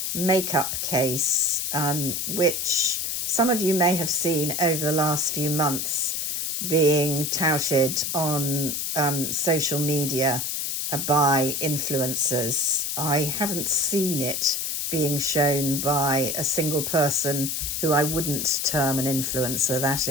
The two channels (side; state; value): left; noise; hiss, 2 dB below the sound